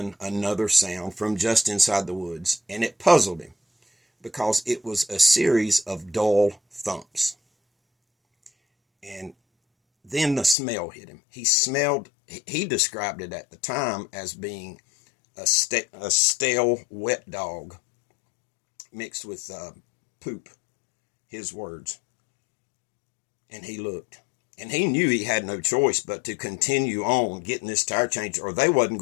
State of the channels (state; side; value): drops out; right; at 10.6 s